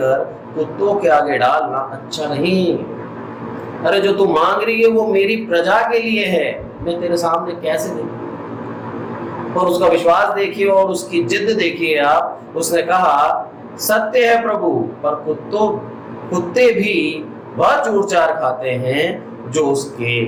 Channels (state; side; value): identical; both; correlation 1.00